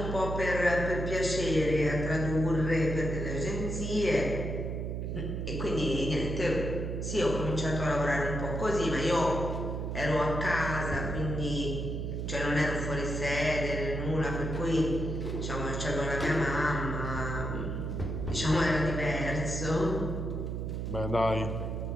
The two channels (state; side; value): noise; right; hum, 3 dB below the sound